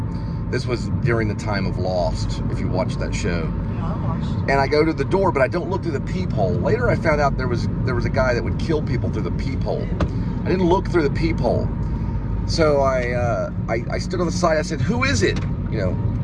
This was during the time of Lost, if you watched that show. Yeah, I watched. And I go to the door, but I don't look through the peephole. Later, I found out there was a guy that would kill people through the peephole. I didn't look through the peephole, so I stood on the side. I said, "Who is it?" You know.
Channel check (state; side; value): identical; both; correlation 1.00